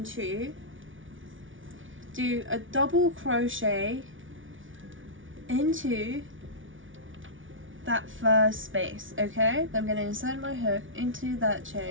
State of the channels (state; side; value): late; left; 0.57 ms